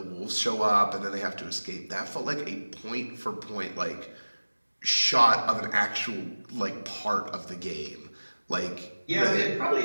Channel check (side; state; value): both; inverted; correlation -1.00